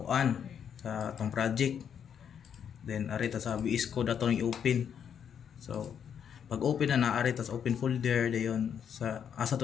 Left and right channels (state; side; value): quieter; right; 8.1 dB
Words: sa tong project. Then ari ta sa VS Code ato i-open. So pag open na ari ta sa open folder dayon sa asa